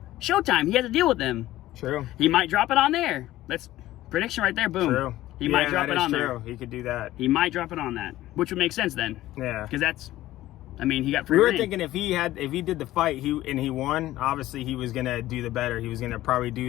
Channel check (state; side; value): quieter; right; 15.4 dB